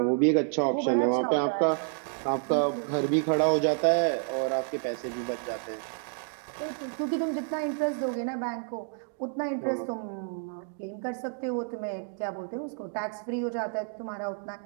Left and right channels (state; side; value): silent; left; 58 dB below the other